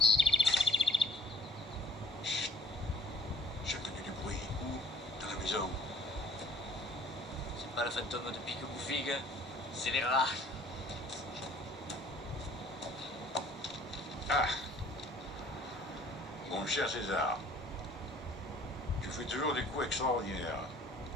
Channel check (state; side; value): normal; both; correlation 0.55